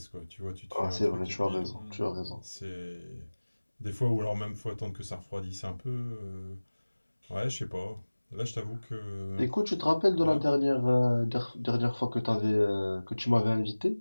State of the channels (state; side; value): inverted; both; correlation -1.00